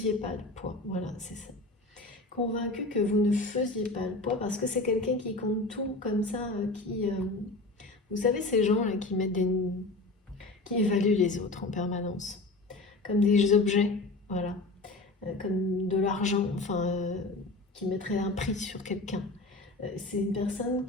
pas le poids. Voilà, c'est ça. Convaincu que vous ne faisiez pas le poids, parce que c'est quelqu'un qui compte tout comme ça, vous savez, ces gens-là qui évaluent les autres en permanence, comme des objets, voilà, comme de l'argent, enfin, qui mettrait un prix sur quelqu'un. C'est une personne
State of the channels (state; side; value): quieter; right; 3.0 dB